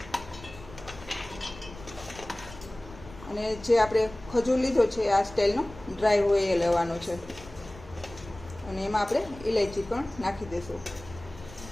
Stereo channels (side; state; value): left; noise; rumble, 17 dB below the sound